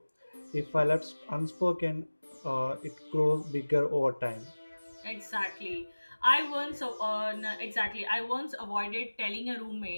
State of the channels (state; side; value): inverted; both; correlation -1.00